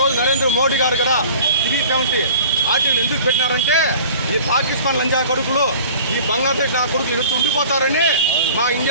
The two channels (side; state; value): both; inverted; correlation -0.44